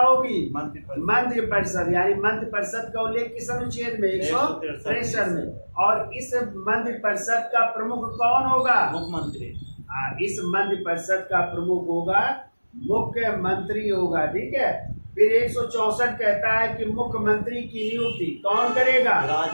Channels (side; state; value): both; inverted; correlation -1.00